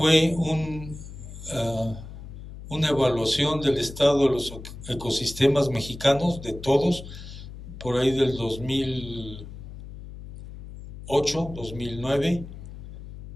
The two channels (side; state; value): left; noise; hum, 13 dB below the sound